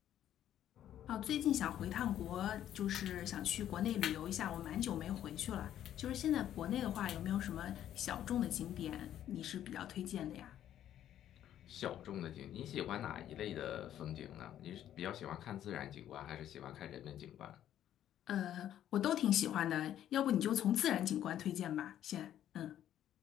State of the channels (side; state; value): right; quieter; 11.3 dB